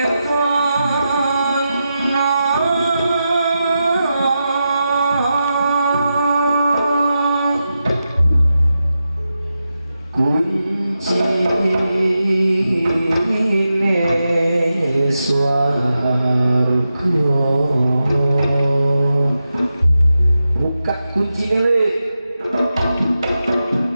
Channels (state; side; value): inverted; both; correlation -0.89